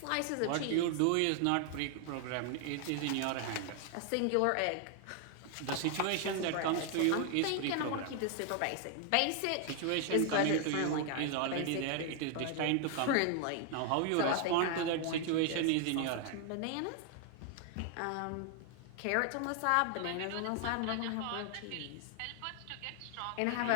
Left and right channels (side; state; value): both; different; correlation 0.00